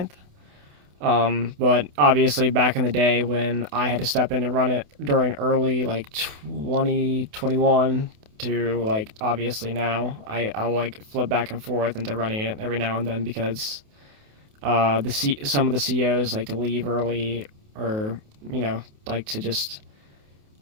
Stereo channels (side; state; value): left; late; 28 ms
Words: But obviously, back in the day when I had to step in and run it during early like 2021 to like obviously now, I'll like flip back and forth into running it every now and then because some of the COs like to leave early or like to just